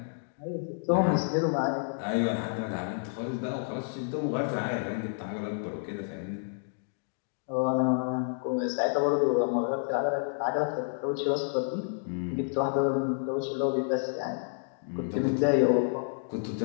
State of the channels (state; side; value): silent; right; digital silence